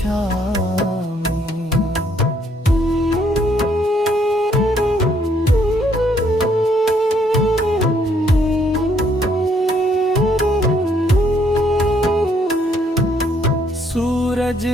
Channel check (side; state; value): both; normal; correlation 0.68